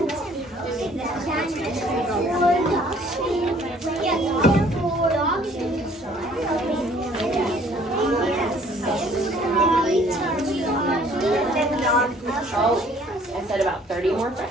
Oh, I said about 30 more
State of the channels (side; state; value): both; normal; correlation 0.58